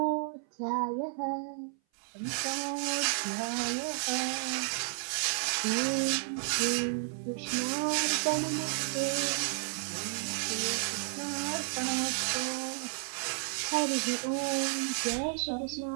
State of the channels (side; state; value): left; silent; 56 dB below the other